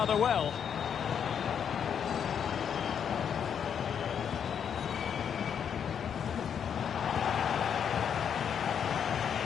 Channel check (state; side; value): quieter; right; 7.9 dB